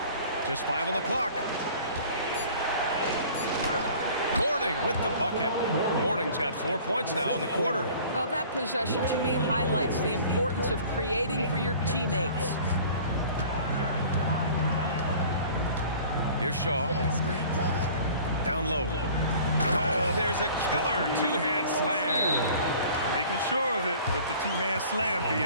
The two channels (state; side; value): inverted; both; correlation -0.47